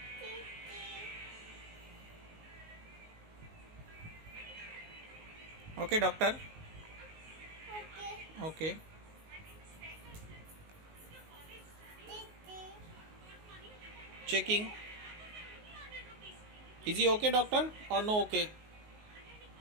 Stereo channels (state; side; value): late; left; 19 ms